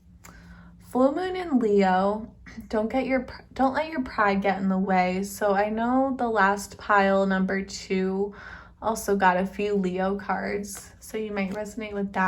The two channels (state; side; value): identical; both; correlation 1.00